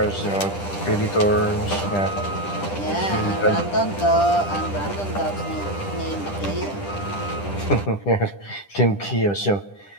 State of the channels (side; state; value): right; late; 10 ms